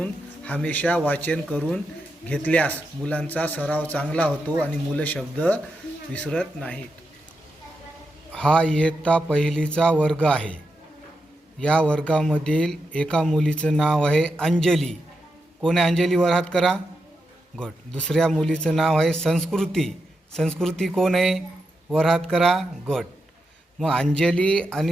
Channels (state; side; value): normal; both; correlation 0.86